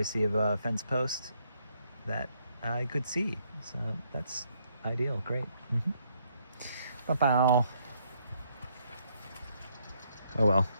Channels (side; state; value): both; inverted; correlation -0.71